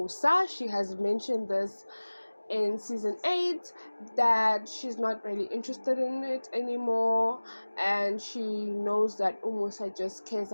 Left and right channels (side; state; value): both; inverted; correlation -1.00